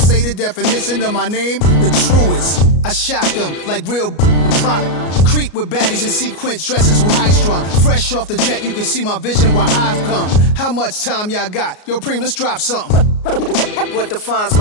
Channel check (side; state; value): right; late; 33 ms